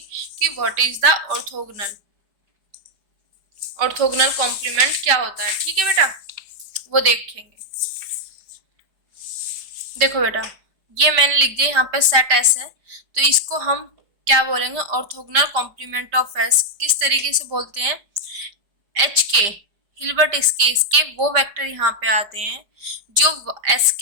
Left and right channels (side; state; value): left; late; 5.0 ms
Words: कि what is the orthogonal complement क्या होता है। ठीक है बेटा, वो देखेंगे। देखो बेटा, ये मैंने लिख दिया यहाँ पे सेट एस है, तो इसको हम क्या बोलेंगे, ऑर्थोगोनल कॉम्प्लीमेंट ऑफ एस। किस तरीके से बोलते हैं, एच के हिल्बर्ट स्केस के वो वेक्टर यहाँ पे आते हैं जो एस